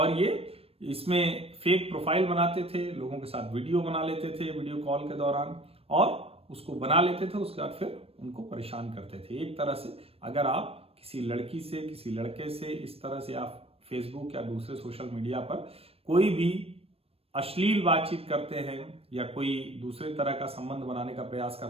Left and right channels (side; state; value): left; late; 0.28 ms